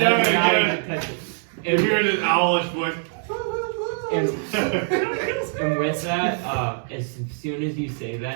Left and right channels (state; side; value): silent; left; 63 dB below the other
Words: Yeah, If you're in an owlish voice. And with that, as soon as you say